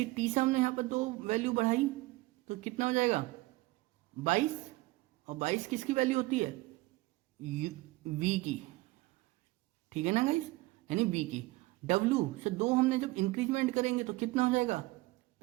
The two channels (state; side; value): quieter; left; 20.6 dB